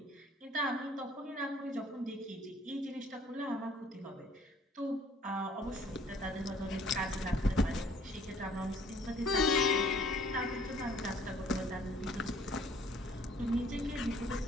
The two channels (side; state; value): both; normal; correlation 0.58